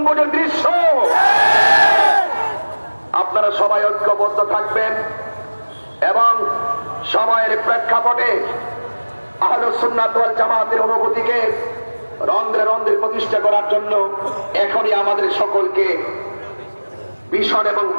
দৃশ্য। আপনারা সবাই ঐক্যবদ্ধ থাকবেন এবং সময়ের প্রেক্ষাপটে আহলুস সুন্নাত ওয়াল জামাতের অনুভূতিকে রন্ধ্রে রন্ধ্রে প্রতিষ্ঠা করার জন্য এখনই আমাদের সকলকে ভিশন এবং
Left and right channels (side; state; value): both; inverted; correlation -1.00